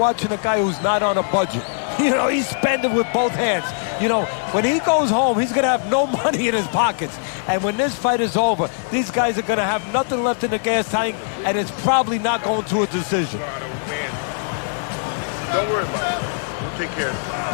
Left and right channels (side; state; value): right; silent; digital silence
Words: a guy who's not on a budget. You know, he's spending with both hands. You know, when he goes home, he's going to have no money in his pockets. And when this fight is over, these guys are going to have nothing left in the gas tank, and it's probably not going to a decision. Don't worry about it. We'll take care of